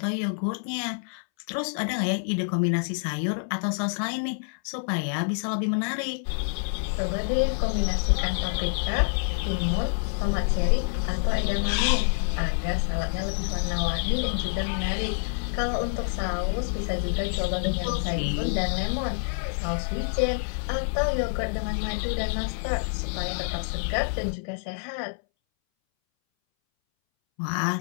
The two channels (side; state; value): right; silent; 60 dB below the other